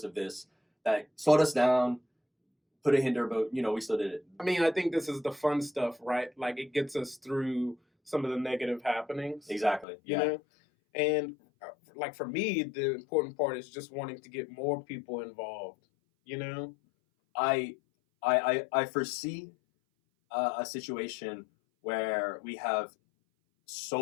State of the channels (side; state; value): right; drops out; at 9.9 s